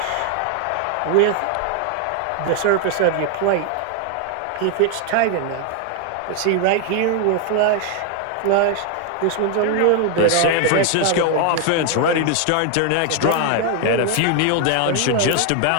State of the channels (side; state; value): both; different; correlation 0.00